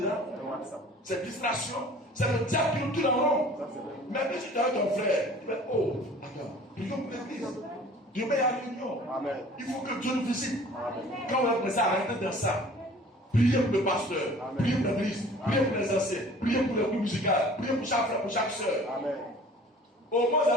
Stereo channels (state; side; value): normal; both; correlation 0.48